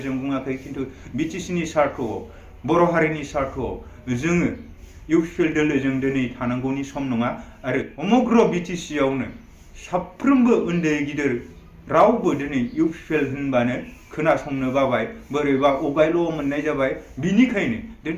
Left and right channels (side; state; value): both; identical; correlation 1.00